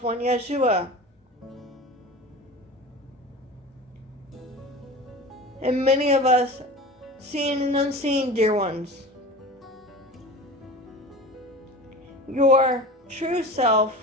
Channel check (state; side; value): normal; both; correlation 0.34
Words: one Yeshua, and many of us seen and unseen, dear ones. Your true self